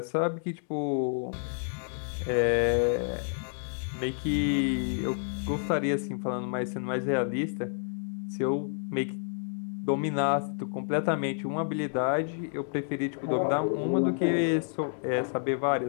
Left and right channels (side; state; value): right; silent; digital silence